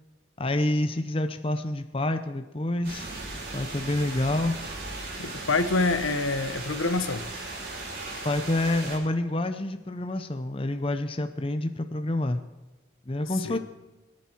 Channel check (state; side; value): normal; both; correlation 0.57